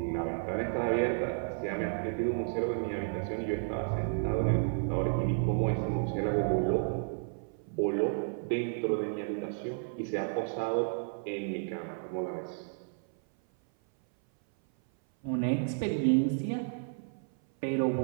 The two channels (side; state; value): left; silent; 56 dB below the other